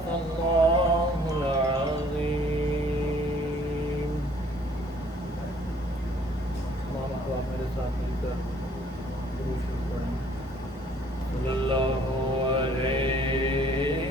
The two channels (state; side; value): normal; both; correlation 0.59